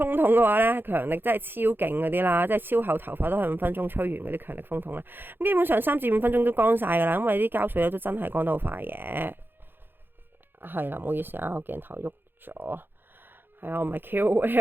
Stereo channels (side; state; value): left; late; 0.10 ms